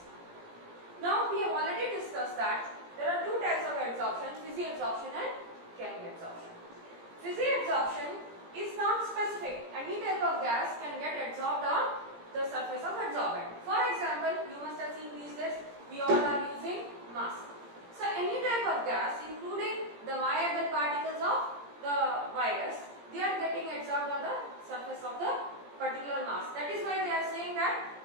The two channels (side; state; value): left; late; 17 ms